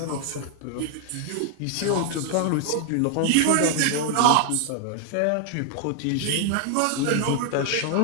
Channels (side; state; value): both; different; correlation 0.00